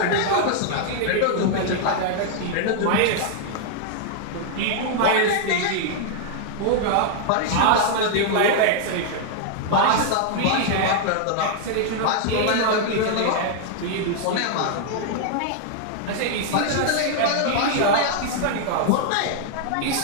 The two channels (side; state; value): both; different; correlation 0.00